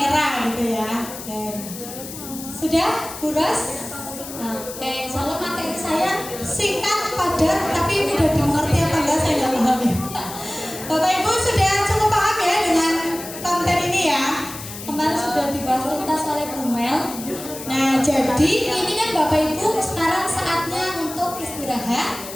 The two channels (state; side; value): noise; left; hiss, 11 dB below the sound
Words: gitu ya. Oke. Sudah Bu Ros? Oke, insya Allah materi saya singkat, padat, tapi mudah dimengerti apa enggak saya nggak paham ya. Bapak Ibu sudah cukup paham ya dengan konten ini ya. Kemarin sudah dibahas tuntas oleh Bu Mel. Nah jadi ini kan Bapak Ibu sekarang saatnya untuk istirahat.